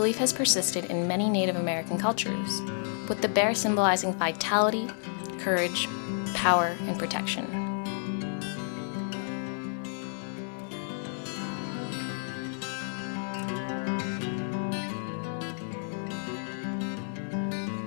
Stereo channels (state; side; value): silent; right; digital silence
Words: has persisted in many Native American cultures, with the bear symbolizing vitality, courage, power, and protection.